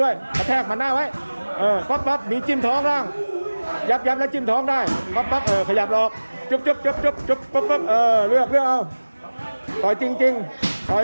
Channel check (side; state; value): both; inverted; correlation -1.00